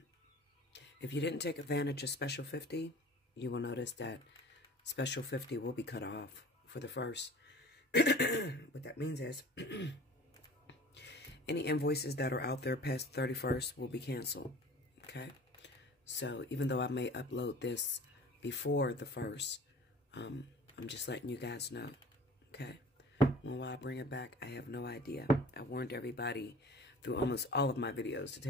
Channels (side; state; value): both; normal; correlation 0.44